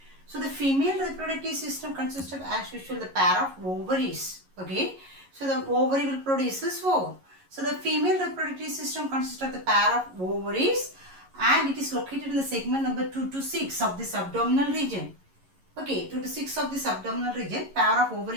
So the female reproductive system consists of, as usual, the pair of ovaries. Okay. So the ovary will produce ovum. So the female reproductive system consists of the pair of ovaries, and it is located in the segment number 2 to 6 of this abdominal region. Okay, 2 to 6 of this abdominal region, pair of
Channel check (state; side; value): late; left; 11 ms